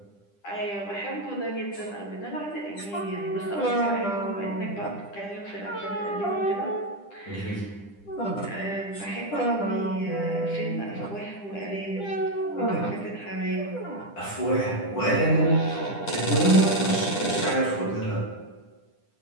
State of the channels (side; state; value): right; late; 10 ms